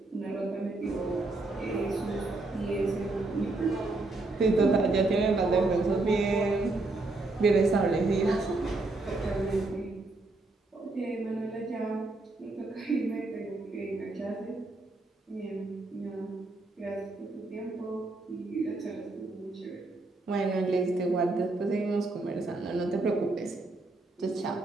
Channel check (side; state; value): left; quieter; 3.2 dB